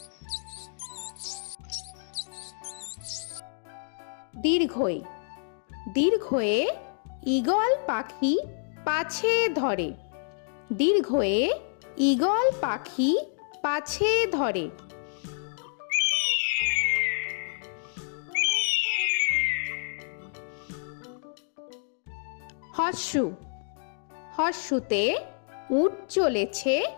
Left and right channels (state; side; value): silent; right; digital silence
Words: দীর্ঘই দীর্ঘয়ে ঈগল পাখি পাছে ধরে। দীর্ঘয়ে ঈগল পাখি পাছে ধরে। হর্ষু হর্ষুতে উট চলেছে